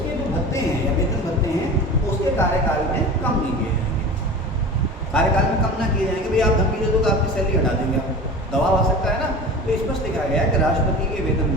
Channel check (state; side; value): normal; both; correlation 0.35